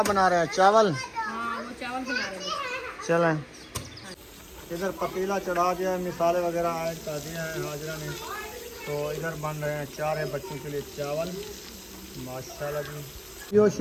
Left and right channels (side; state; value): both; identical; correlation 1.00